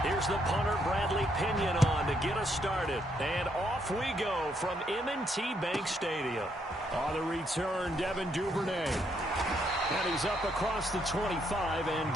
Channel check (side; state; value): both; normal; correlation 0.74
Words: There's the punter, Bradley Pinion, on to get us started. And off we go from M&T Bank Stadium. On the return, Devin Duvernay. And he's up across the 25 and